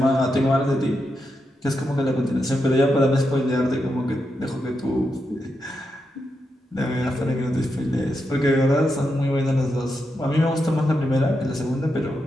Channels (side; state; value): both; normal; correlation 0.85